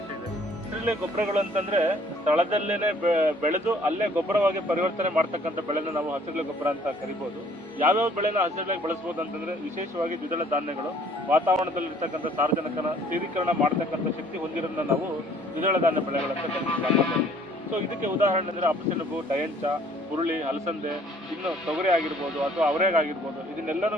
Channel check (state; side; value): normal; both; correlation 0.58